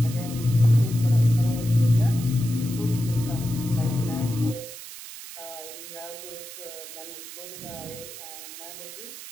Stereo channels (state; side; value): noise; right; hiss, 13 dB below the sound